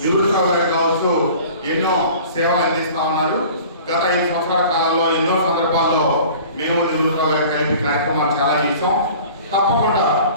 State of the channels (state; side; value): inverted; both; correlation -0.44